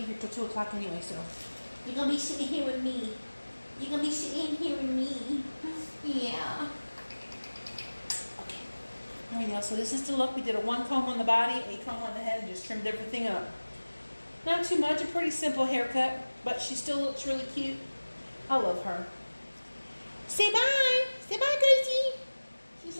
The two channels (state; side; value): inverted; both; correlation -1.00